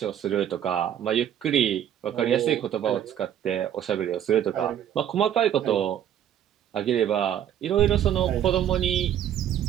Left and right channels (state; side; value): quieter; left; 10.2 dB